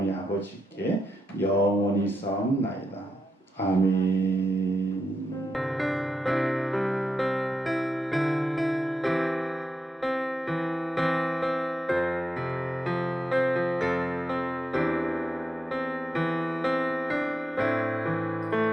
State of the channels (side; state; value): both; normal; correlation 0.86